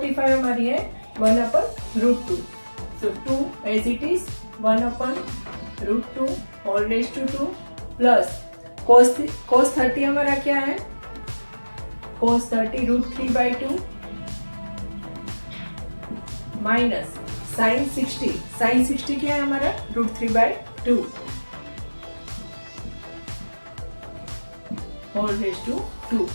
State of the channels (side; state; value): both; inverted; correlation -1.00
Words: हमारी है 1/√2। So 2 as it is 1/√2 whole raise to 2 plus cos 30 हमारा क्या है, cos 30 √3/2 माइनस sin 60 क्या है हमारा √3/2 whole raise to 2।